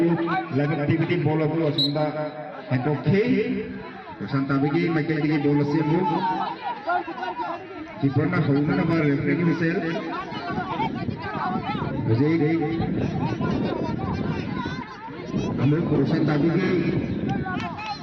लग एक्टिविटी बॉल हो सुंदा है तो खे प्रशांत अभी माइकल की बॉल से मूव कीपर ना होना ना बार रेफरी की मिसेल विजय हम लोग प्रशांत अभी के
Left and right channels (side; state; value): both; identical; correlation 1.00